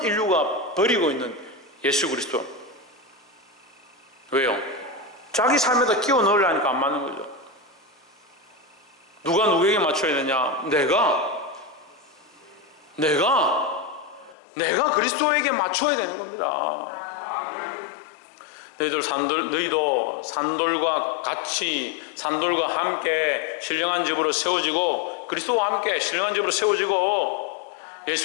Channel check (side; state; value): right; drops out; at 14.4 s